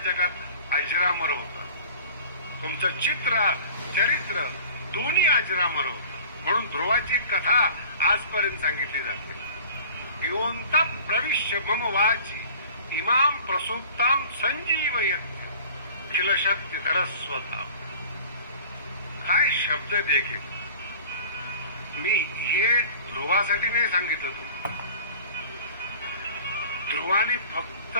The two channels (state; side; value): inverted; both; correlation -0.44